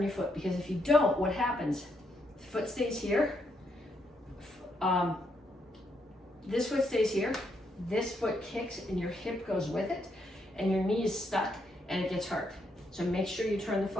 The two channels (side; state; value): both; normal; correlation 0.77